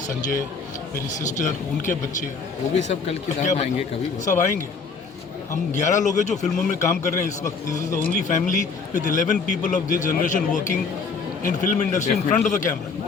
संजय, मेरी सिस्टर, उनके बच्चे, वो भी सब कल की रात आएंगे कभी? सब आएंगे। हम 11 लोग हैं जो फिल्मों में काम कर रहे हैं इस वक्त। This is the only family with 11 people of this generation working in film industry in front of the camera.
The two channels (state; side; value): quieter; right; 4.9 dB